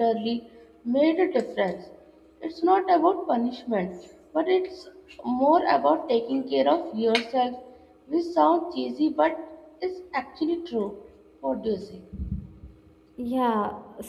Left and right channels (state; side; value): identical; both; correlation 1.00